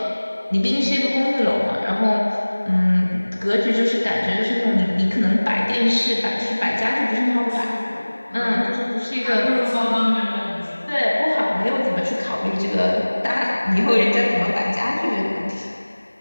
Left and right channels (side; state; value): both; inverted; correlation -1.00